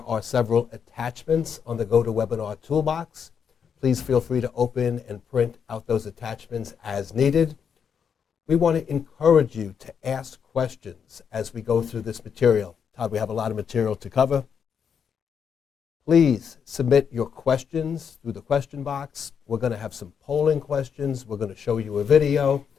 are several attachments on the GoToWebinar toolbox. Please feel free to open and print out those attachments as needed. We want to encourage you to ask questions as we go through this material. Todd, we have a lot of material to cover. Please submit your questions through the question box. We're going to have some polling questions. We're going to show you a video.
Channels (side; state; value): right; quieter; 7.2 dB